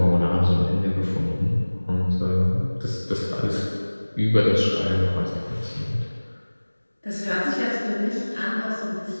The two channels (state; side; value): inverted; both; correlation -1.00